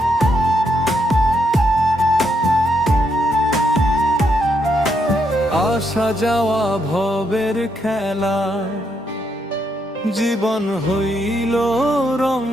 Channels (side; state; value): both; normal; correlation 0.77